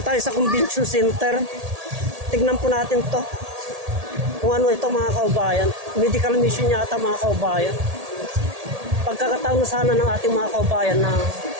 tayo sa Convention Center. Tignan po natin to kung ano ito mga kaubayan. Medical mission yata mga kaubayan. Pagkakataon na sana ng ating mga kaubayan na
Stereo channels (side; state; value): left; late; 1.8 ms